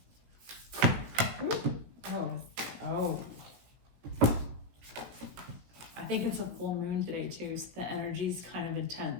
Ooh. Oh. I think it's a full moon today too, so the energy's kind of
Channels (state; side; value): late; left; 17 ms